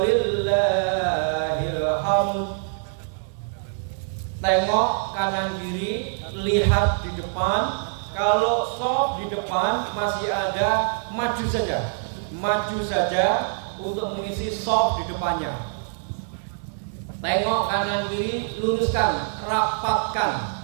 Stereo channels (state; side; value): silent; left; digital silence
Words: hamd. Tengok kanan kiri, lihat di depan. Kalau shaf di depan masih ada, maju saja untuk mengisi shaf di depannya. Tengok kanan kiri, luruskan, rapatkan.